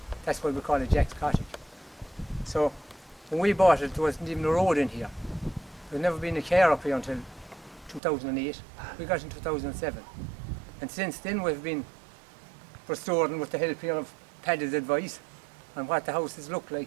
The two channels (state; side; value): drops out; left; at 8.0 s